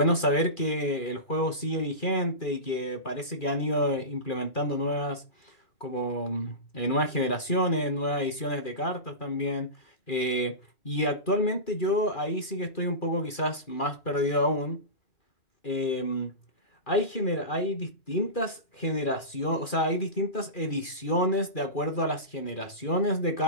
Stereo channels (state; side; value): late; right; 2.4 ms